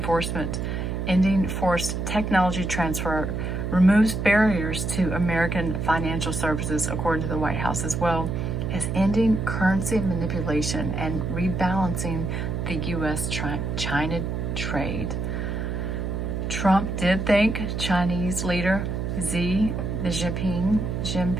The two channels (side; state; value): right; noise; hum, 2 dB below the sound